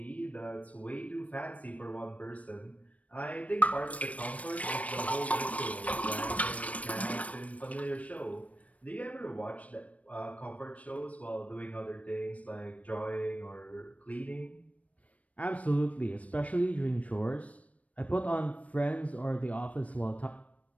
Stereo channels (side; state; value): right; late; 0.067 ms